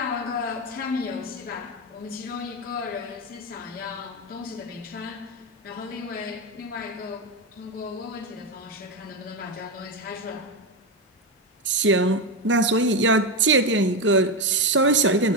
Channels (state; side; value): normal; both; correlation 0.11